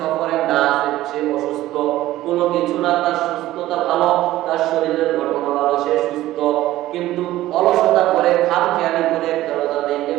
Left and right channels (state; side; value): quieter; left; 15.4 dB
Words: না আছে সে অসুস্থ, কোনো কিছু না, তার সুস্থতা ভালো, তার শরীরের গঠন ভালো, সে সুস্থ, কিন্তু অলসতা করে খামখেয়ালি করে একটা রোজা ভেঙে